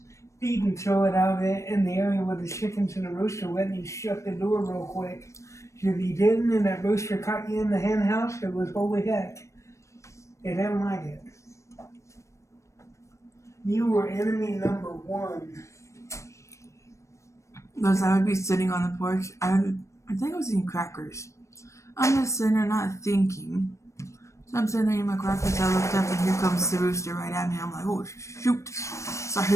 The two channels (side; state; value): right; late; 0.15 ms